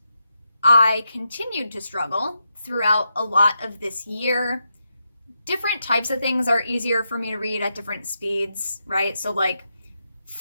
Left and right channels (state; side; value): inverted; both; correlation -0.85